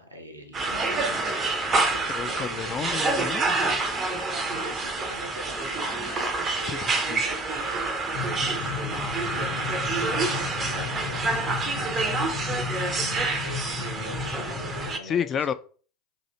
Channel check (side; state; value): both; normal; correlation 0.52